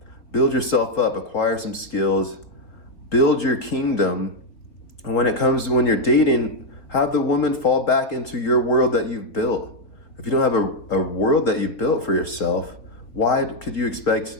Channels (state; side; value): late; right; 3.7 ms